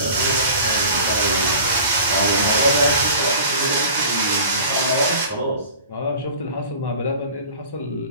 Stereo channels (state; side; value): inverted; both; correlation -0.41